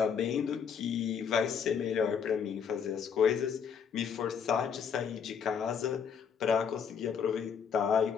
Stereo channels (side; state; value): right; quieter; 7.0 dB